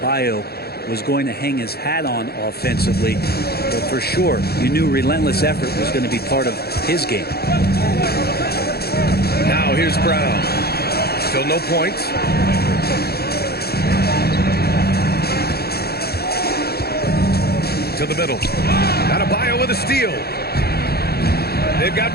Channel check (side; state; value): right; late; 0.46 ms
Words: was going to hang his hat on offensively. But for sure, you knew relentless effort was going to be part of his game. Now here's Brown. Still no points. To the middle. Adebayo with a steal. They've